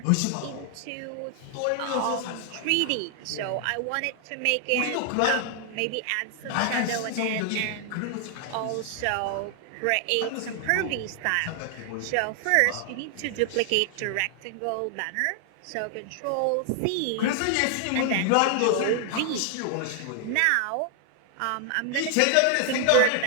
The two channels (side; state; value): both; different; correlation 0.00